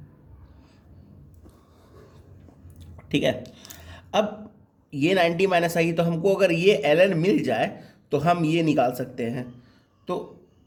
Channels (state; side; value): identical; both; correlation 1.00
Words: ठीक है। अब ये 90 माइनस आई, तो हमको अगर ये ln मिल जाए तो हम ये निकाल सकते हैं। तो